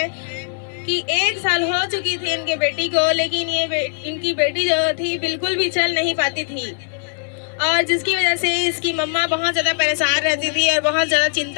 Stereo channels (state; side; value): silent; right; digital silence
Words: कि 1 साल हो चुकी थी इनके बेटी को, लेकिन इनकी बेटी जो थी बिल्कुल भी चल नहीं पाती थी और जिसकी वजह से इसकी मम्मा बहुत ज़्यादा परेशान रहती थी और बहुत ज़्यादा